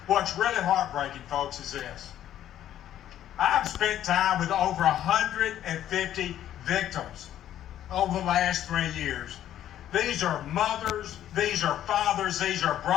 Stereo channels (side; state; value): right; quieter; 11.6 dB